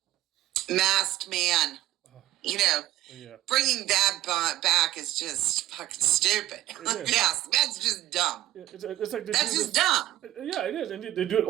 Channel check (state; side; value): quieter; left; 14.7 dB